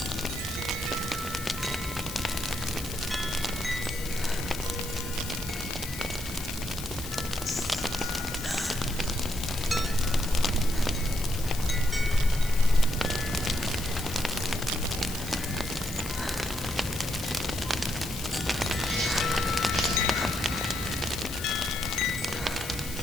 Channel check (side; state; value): left; noise; hiss, 10 dB below the sound